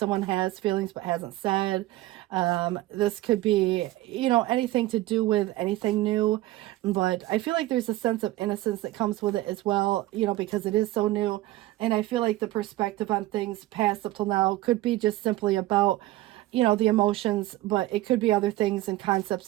has feelings but hasn't said. This could be, you know, anything to do with anything new. But I feel like there's a sense of innocence that comes with it as well, you know, because it is so new. And I feel like the perspective on things past up till now could be just simply about, you know, the emotions, but it could be other things and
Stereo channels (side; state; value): left; quieter; 16.9 dB